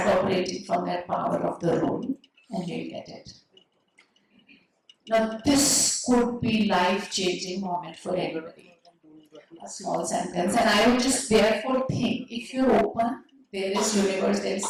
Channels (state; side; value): identical; both; correlation 1.00